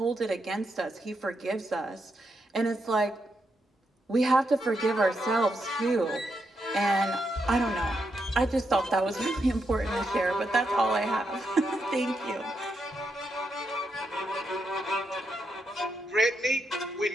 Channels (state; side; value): normal; both; correlation 0.82